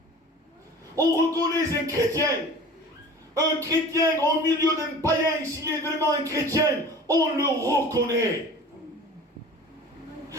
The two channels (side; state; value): both; normal; correlation 0.41